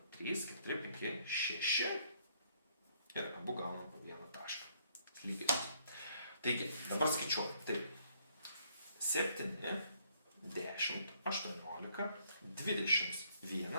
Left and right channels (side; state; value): both; inverted; correlation -0.68